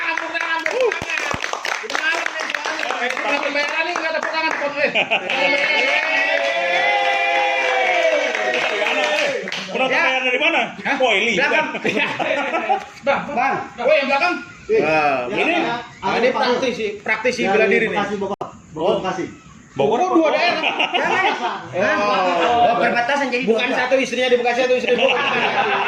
Penonton dari mana? Ini. Bang. Yang belakang. Ini praktisi bela diri nih. Bogor 2 daerah. Perbatasan jadi Bukan satu istrinya di Bekasi, satu istri di Bogor.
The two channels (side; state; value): both; identical; correlation 1.00